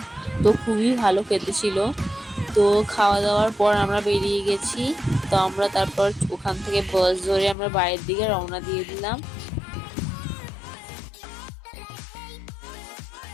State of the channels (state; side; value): drops out; right; at 7.6 s